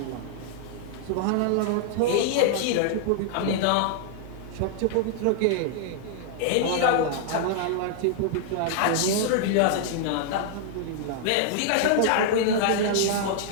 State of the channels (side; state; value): both; different; correlation -0.01